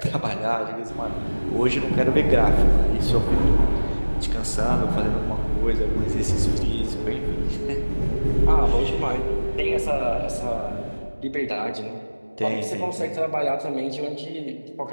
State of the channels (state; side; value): inverted; both; correlation -1.00